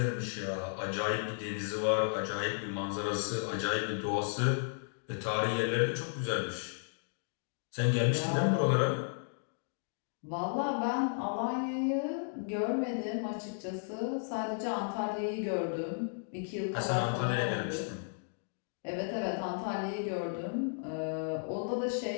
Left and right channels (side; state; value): right; silent; digital silence